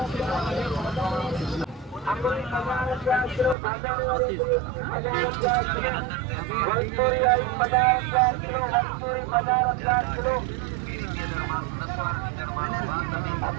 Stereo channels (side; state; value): left; drops out; at 3.6 s